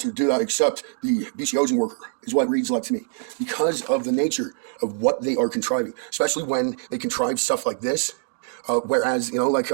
do that except the BC housing worker, is what it reads like to me, because of the nature of what they are contriving, especially when they contrive stuff like this. Whereas, here,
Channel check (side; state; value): left; silent; digital silence